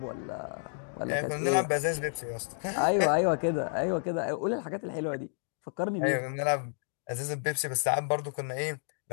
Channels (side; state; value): right; silent; digital silence